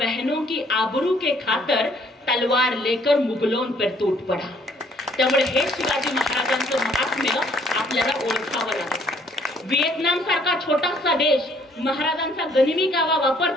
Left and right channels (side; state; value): both; normal; correlation 0.63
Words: की आबरू के खातर तलवार लेकर मुगलों पर टूट पड़ा. त्यामुळे हे शिवाजी महाराजांचं महात्म्य आपल्याला ओळखावं लागतं. व्हिएतनाम सारखा छोटासा देश महाराजांचा गनिमी कावा